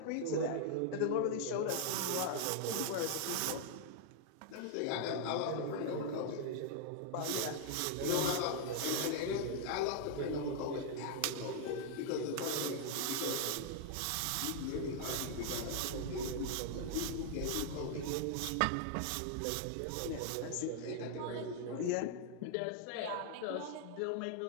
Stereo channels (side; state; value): both; different; correlation 0.00